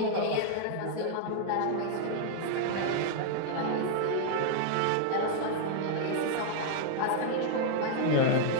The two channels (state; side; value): different; both; correlation -0.01